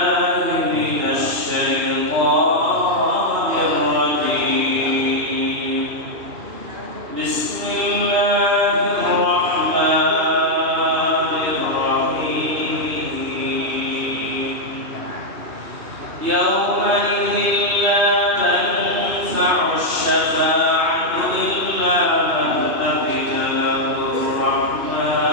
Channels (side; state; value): left; late; 2.8 ms